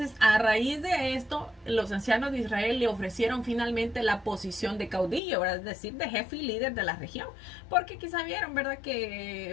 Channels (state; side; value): drops out; right; at 5.2 s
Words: a raíz de esto, los ancianos de Israel le ofrecieron finalmente la posición de caudillo, ¿verdad? Es decir, de jefe y líder de la región, porque quizá vieron, ¿verdad?